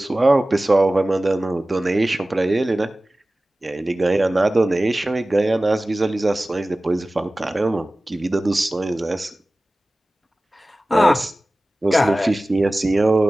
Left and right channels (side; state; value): both; normal; correlation 0.97